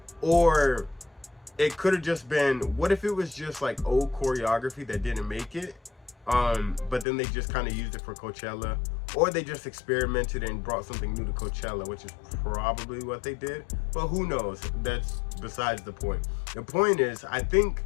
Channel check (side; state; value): right; drops out; at 7.1 s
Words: or it could have just been, what if it was just like old choreography that didn't make it, but then they just kind of used it for Coachella, or they just experimented and brought something new to Coachella, which is probably what they did, but who knows? That's besides the point. The point is, I think